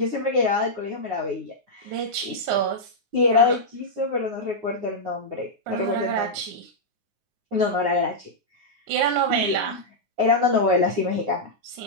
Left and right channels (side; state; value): left; late; 9.6 ms